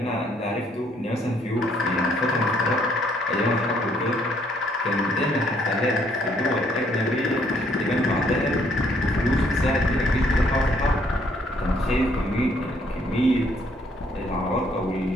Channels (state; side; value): normal; both; correlation 0.67